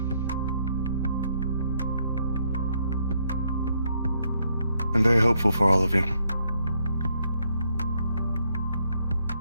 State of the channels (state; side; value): inverted; both; correlation -0.74